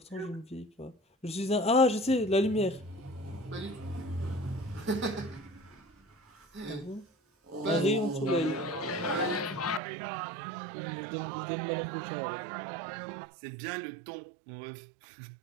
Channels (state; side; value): drops out; left; at 9.8 s